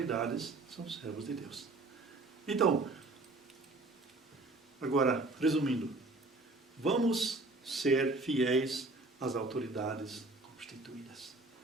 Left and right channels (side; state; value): left; quieter; 3.1 dB